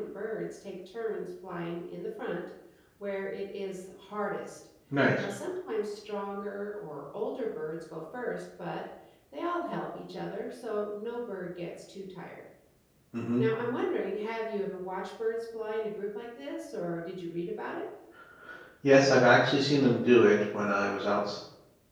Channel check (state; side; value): identical; both; correlation 1.00